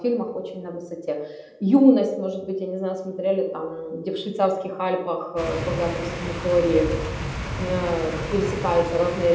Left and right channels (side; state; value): both; identical; correlation 1.00